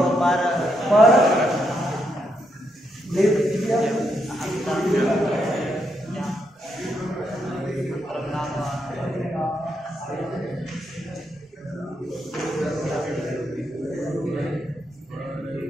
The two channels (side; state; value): both; normal; correlation 0.79